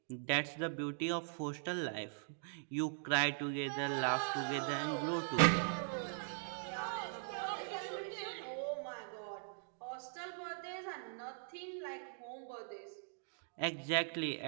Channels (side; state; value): left; silent; digital silence